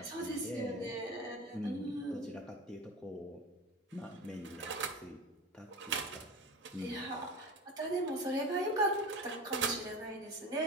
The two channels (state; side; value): normal; both; correlation 0.29